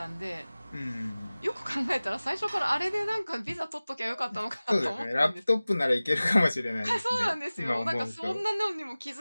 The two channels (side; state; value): both; inverted; correlation -0.98